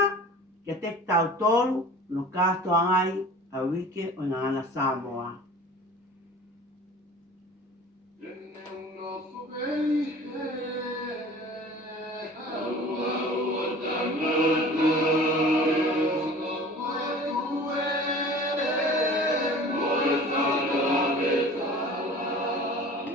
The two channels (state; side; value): normal; both; correlation 0.43